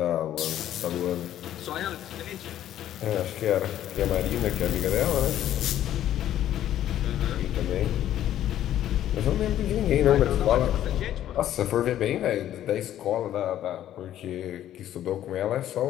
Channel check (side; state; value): right; quieter; 11.9 dB